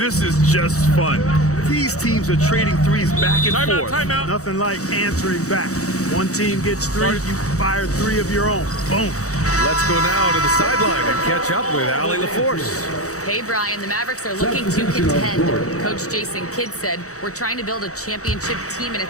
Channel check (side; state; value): right; late; 0.65 ms